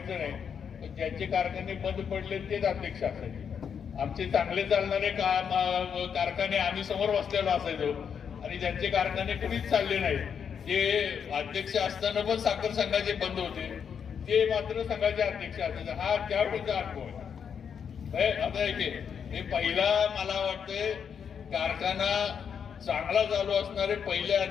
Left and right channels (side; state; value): right; quieter; 7.3 dB